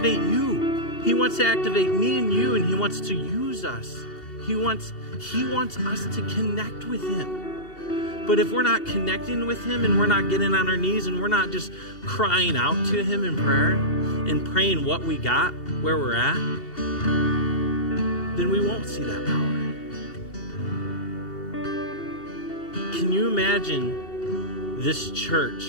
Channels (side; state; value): right; late; 2.7 ms